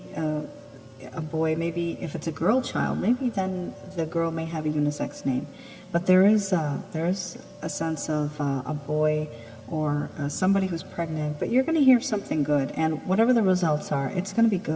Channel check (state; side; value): identical; both; correlation 1.00